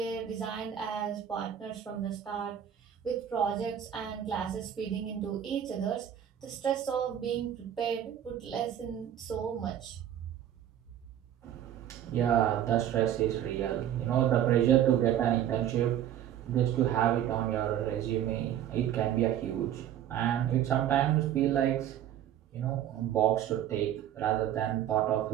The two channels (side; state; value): left; quieter; 10.6 dB